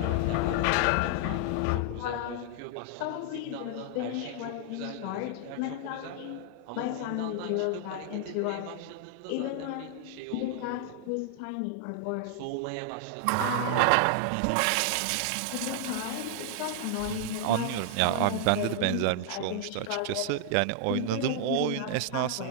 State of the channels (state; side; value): different; both; correlation 0.00